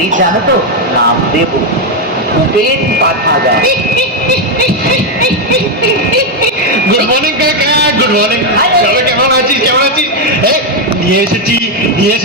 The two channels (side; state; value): both; normal; correlation 0.03